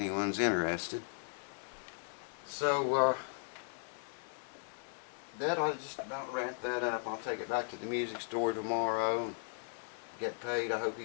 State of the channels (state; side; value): silent; right; 53 dB below the other